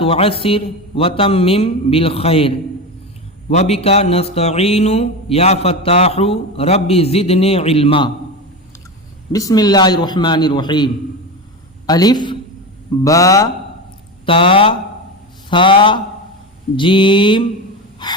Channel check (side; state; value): both; normal; correlation 0.22